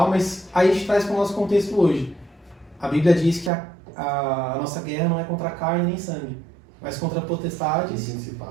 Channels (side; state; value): left; drops out; at 3.5 s